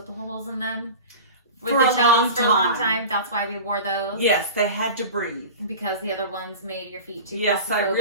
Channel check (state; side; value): inverted; both; correlation -0.34